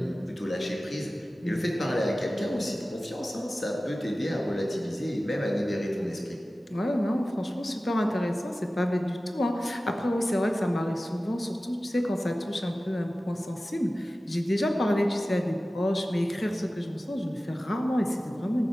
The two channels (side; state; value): both; normal; correlation 0.96